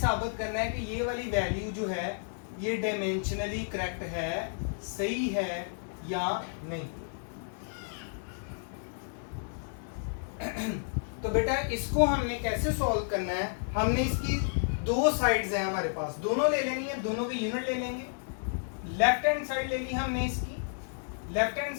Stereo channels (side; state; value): right; silent; digital silence